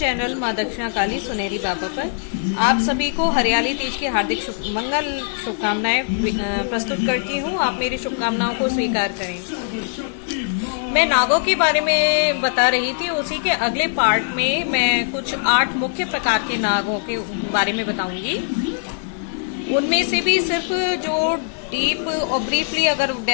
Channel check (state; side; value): silent; right; digital silence